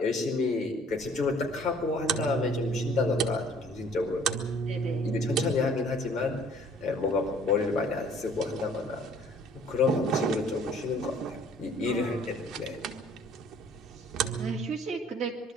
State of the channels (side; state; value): both; normal; correlation 0.56